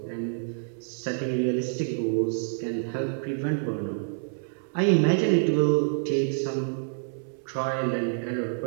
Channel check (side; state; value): left; silent; 60 dB below the other